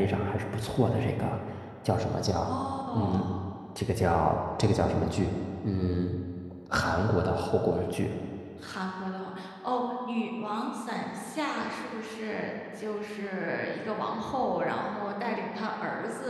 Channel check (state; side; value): identical; both; correlation 1.00